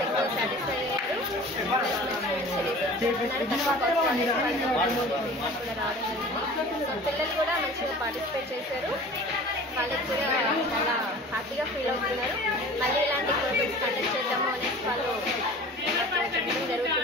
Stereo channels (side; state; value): both; normal; correlation 0.42